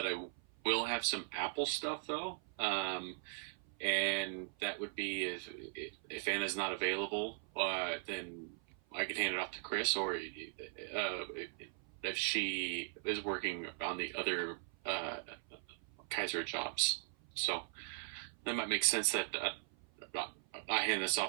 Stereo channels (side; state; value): left; silent; 52 dB below the other